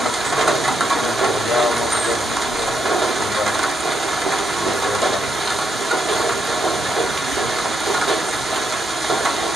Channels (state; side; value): normal; both; correlation 0.80